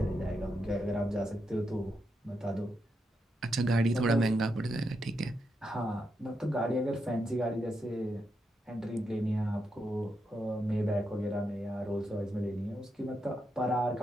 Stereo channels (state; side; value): normal; both; correlation 0.83